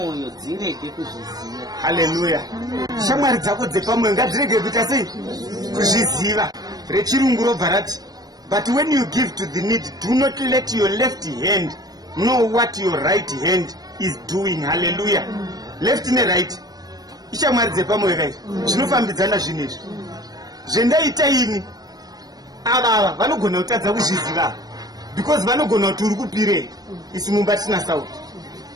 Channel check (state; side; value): late; left; 0.19 ms